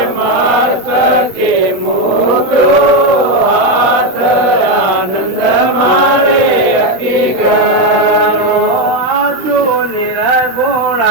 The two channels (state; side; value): late; left; 16 ms